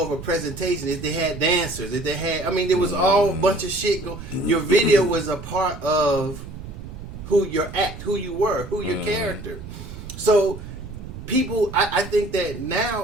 of a presentation. If they had dancers, if they had, there was all a bunch of shit go. Your video was a part of who your act, who you were, who your character. So people, I think that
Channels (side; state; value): right; noise; rumble, 12 dB below the sound